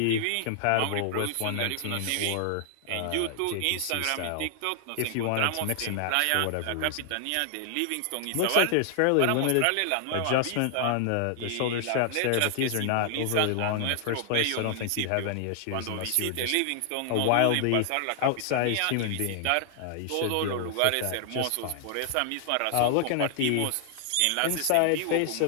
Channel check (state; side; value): different; both; correlation 0.00